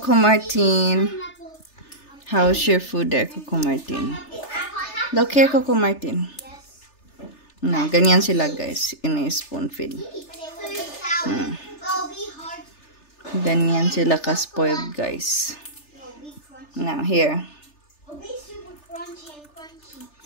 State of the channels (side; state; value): right; late; 3.3 ms